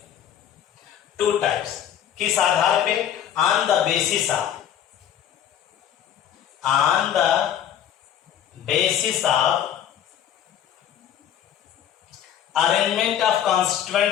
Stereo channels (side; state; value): right; quieter; 9.9 dB